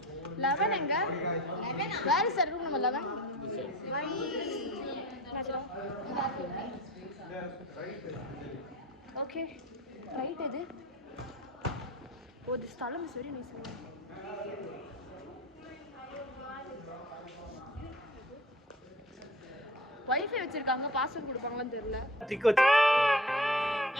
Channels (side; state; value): both; normal; correlation 0.39